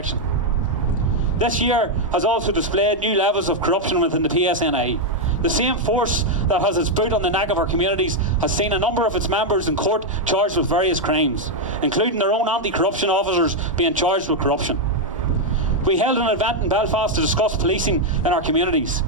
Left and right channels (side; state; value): both; normal; correlation 0.00